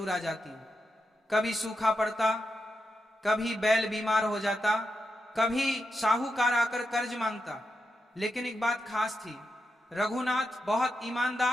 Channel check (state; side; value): normal; both; correlation 0.87